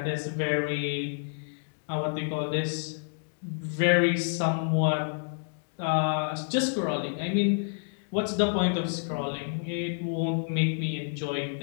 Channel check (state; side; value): silent; right; digital silence